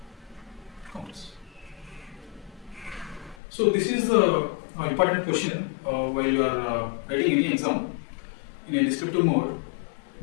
counters. So this is the important question while you are writing any exam in a descriptive mode.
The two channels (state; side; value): drops out; right; at 3.4 s